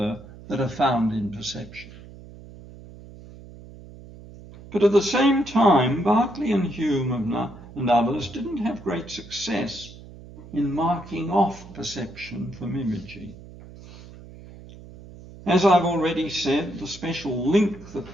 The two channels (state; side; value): noise; right; hum, 18 dB below the sound